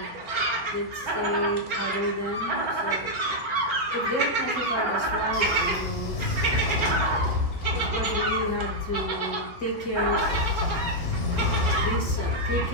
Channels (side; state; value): right; late; 6.6 ms